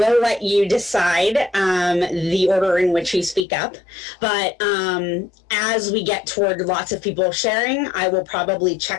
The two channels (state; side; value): drops out; right; at 3.5 s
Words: let you decide the order in which you speak up. But as we get toward lots of people sharing, I will probably